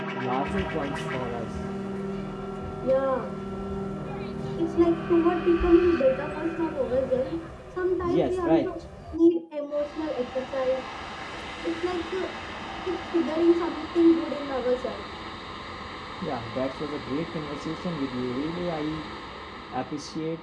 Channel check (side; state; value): both; identical; correlation 1.00